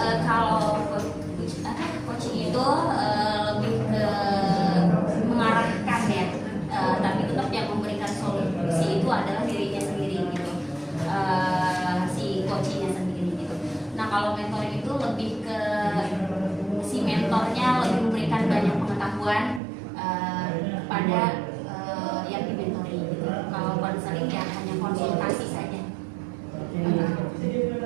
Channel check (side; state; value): left; drops out; at 19.6 s